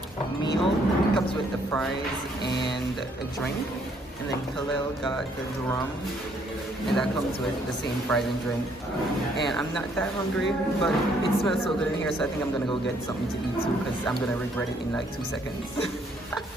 meal. It comes with the fries and a drink. And then Khalil got the drum, and that comes with the same fries and drink. And I'm not that hungry, but it smells so good in here, so I think I'm gonna go get something to eat too, because I'm gonna regret it in like 2 seconds.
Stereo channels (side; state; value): both; normal; correlation 0.67